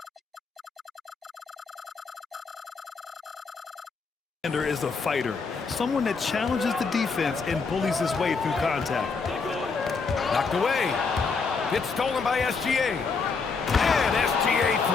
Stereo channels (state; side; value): quieter; right; 4.8 dB